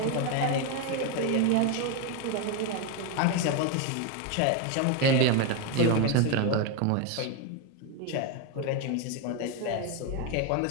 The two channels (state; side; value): different; both; correlation 0.02